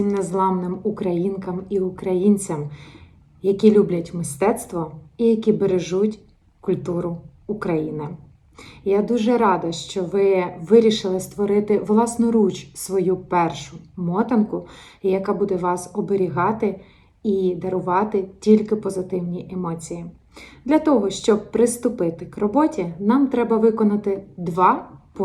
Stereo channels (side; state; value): both; identical; correlation 1.00